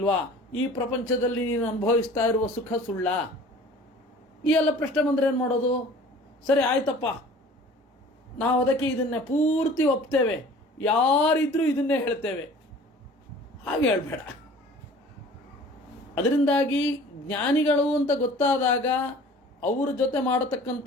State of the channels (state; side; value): normal; both; correlation 0.46